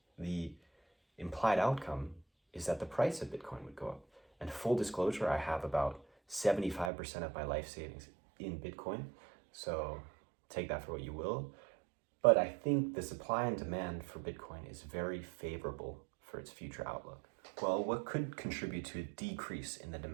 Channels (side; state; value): left; drops out; at 6.9 s